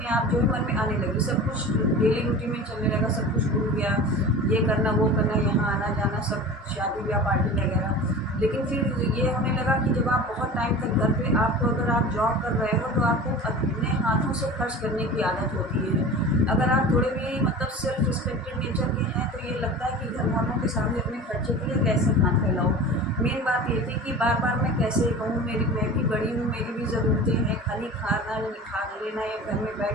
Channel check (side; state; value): both; normal; correlation 0.36